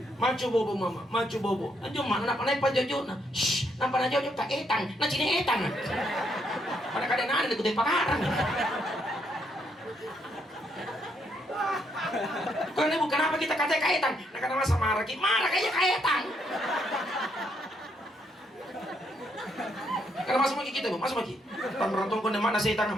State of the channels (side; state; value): both; normal; correlation 0.75